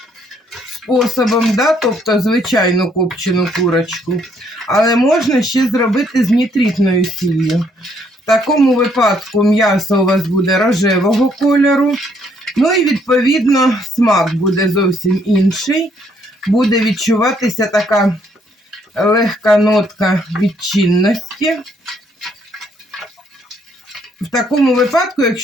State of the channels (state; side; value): normal; both; correlation 0.69